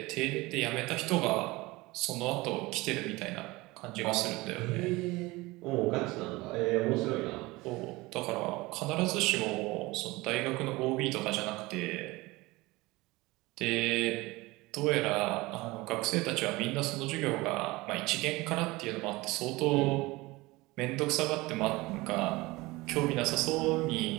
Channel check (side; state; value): left; quieter; 21.4 dB